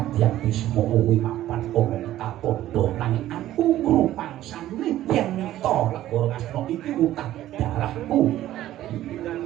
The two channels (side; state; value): left; quieter; 13.7 dB